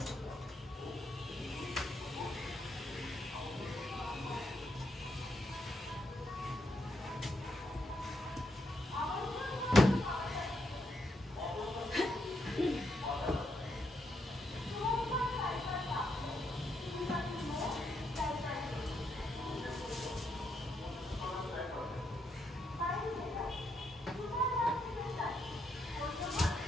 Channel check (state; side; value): normal; both; correlation 0.78